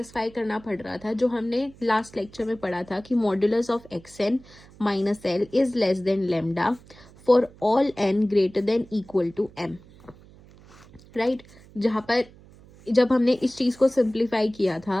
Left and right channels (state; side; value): noise; right; hum, 23 dB below the sound